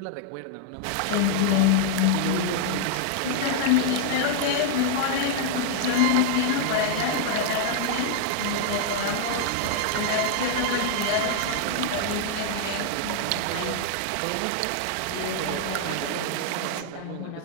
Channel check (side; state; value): both; different; correlation 0.00